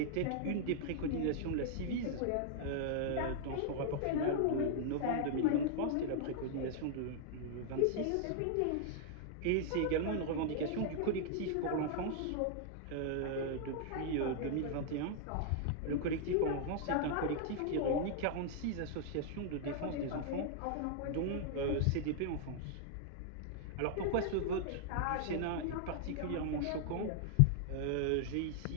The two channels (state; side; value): different; both; correlation -0.01